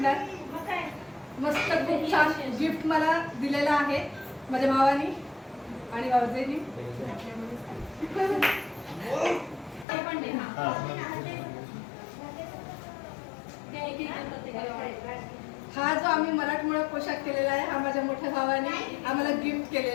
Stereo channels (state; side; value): drops out; right; at 9.9 s